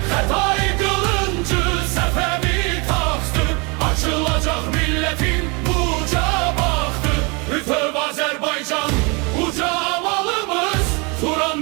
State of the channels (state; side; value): quieter; left; 29.9 dB